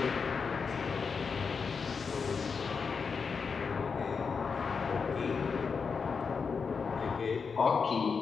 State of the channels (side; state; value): right; quieter; 5.5 dB